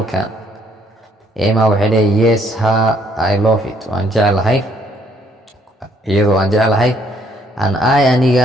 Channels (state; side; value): normal; both; correlation 0.67